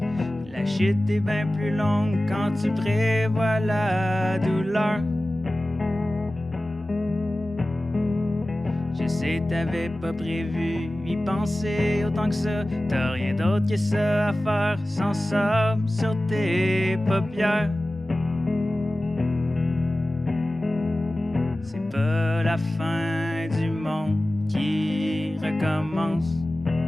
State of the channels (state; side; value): normal; both; correlation 0.96